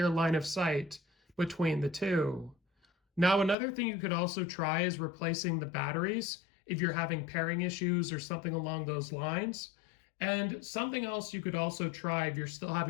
line of sight between the two. Now, another thing you could also try is replacing the batteries if you're having pairing issues or something along those lines. And something else you could also try if you're still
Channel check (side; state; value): right; drops out; at 3.6 s